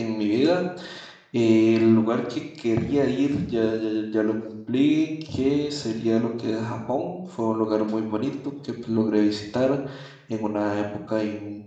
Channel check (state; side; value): identical; both; correlation 1.00